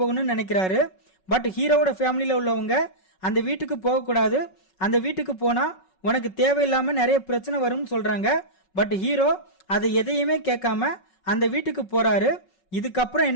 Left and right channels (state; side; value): late; right; 5.4 ms